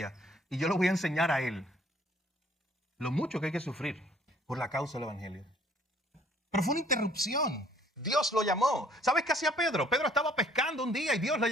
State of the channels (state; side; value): normal; both; correlation 0.60